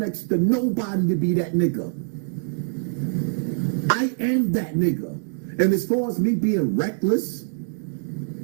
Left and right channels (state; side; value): silent; left; digital silence